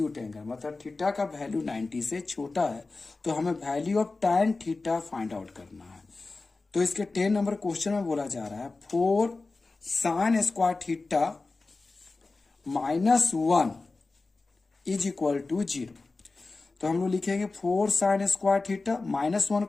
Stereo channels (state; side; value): quieter; right; 3.6 dB